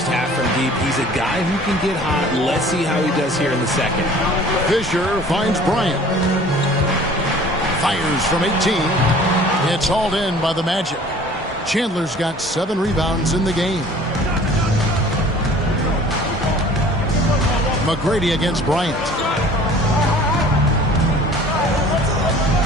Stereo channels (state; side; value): normal; both; correlation 0.48